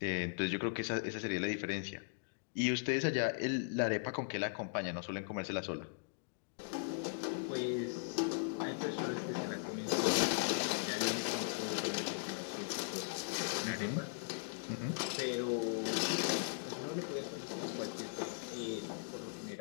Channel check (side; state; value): right; silent; digital silence